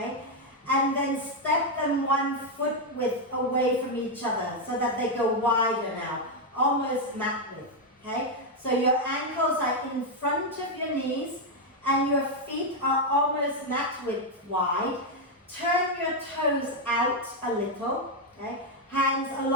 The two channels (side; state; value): both; normal; correlation 0.01